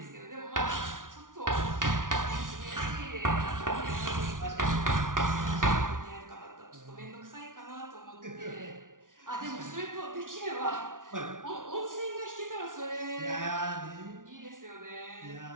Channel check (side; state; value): left; late; 0.88 ms